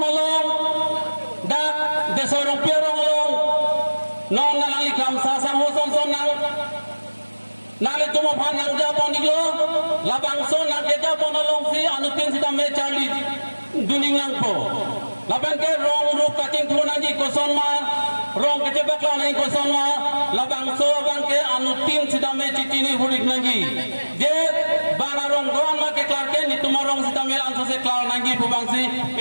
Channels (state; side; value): inverted; both; correlation -1.00